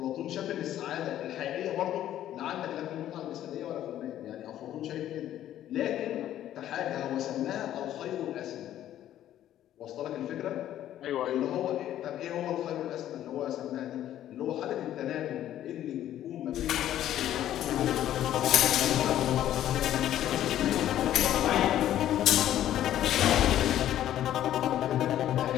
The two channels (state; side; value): quieter; right; 12.1 dB